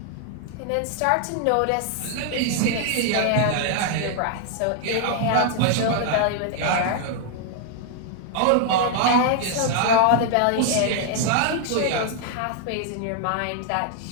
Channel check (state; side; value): different; both; correlation 0.00